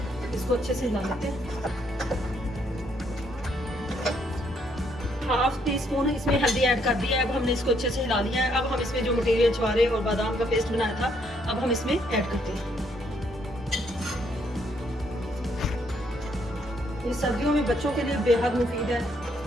इसको अच्छे से हिला लेते हैं। ½ टीस्पून इसमें हल्दी ऐड कर दिया है। अब हमने इसको अच्छे से हिला लिया है। अब हम इसमें जो मटेरियल छुहारे और बादाम का पेस्ट बनाया था अब हम इसमें ऐड करते हैं। ये सर्दियों में बच्चों के लिए बेहद मुफीद है।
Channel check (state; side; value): normal; both; correlation 0.71